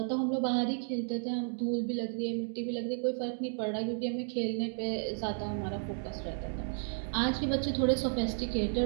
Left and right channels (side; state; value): left; silent; 56 dB below the other